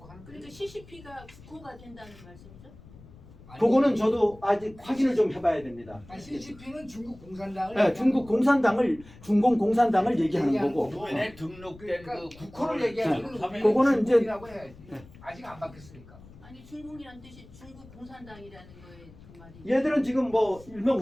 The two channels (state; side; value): noise; left; rumble, 21 dB below the sound